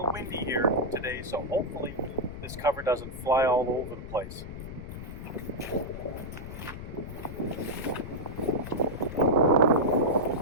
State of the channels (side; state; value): left; noise; rumble, 10 dB below the sound